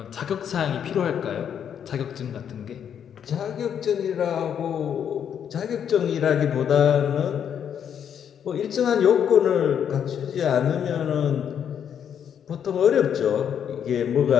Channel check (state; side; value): quieter; right; 8.5 dB